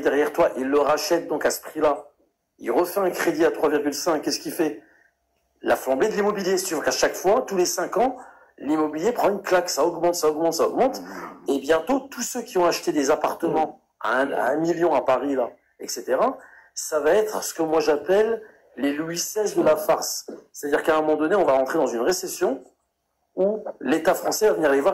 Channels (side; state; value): both; identical; correlation 1.00